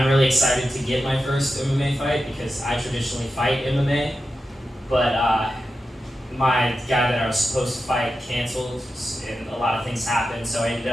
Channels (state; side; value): normal; both; correlation 0.91